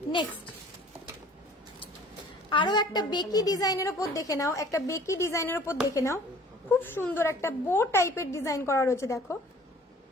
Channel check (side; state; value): both; normal; correlation 0.50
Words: নেক্সট আরো একটা বেকি ডিজাইনের উপর দেখে নাও, একটা বেকি ডিজাইনের উপর দেখে নাও। খুব সুন্দর একটা বো টাইপের ডিজাইন করা রয়েছে। দেখো